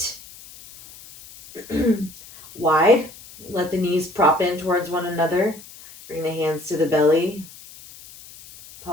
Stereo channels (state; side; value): noise; left; hiss, 19 dB below the sound